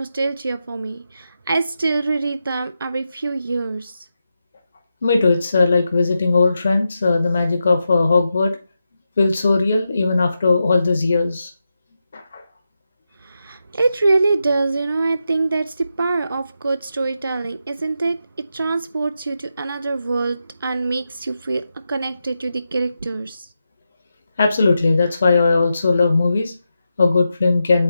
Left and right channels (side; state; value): both; inverted; correlation -0.88